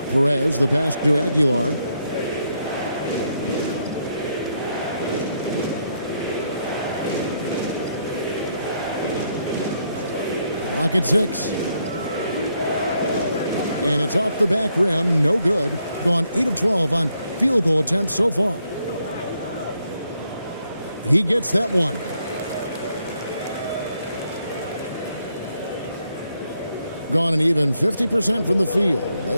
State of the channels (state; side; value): inverted; both; correlation -0.76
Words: Perez, the pass to Aguilar. Clock at 6. And it's off the back rim, no good. Gone 8 of 12 on field goal attempts so far. He gets that one. Gone an even 50% from the field.